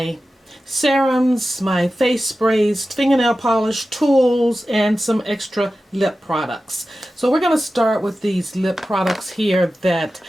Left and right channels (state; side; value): normal; both; correlation 0.94